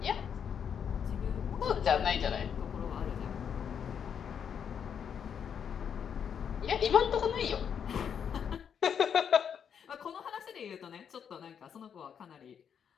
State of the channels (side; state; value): right; quieter; 7.7 dB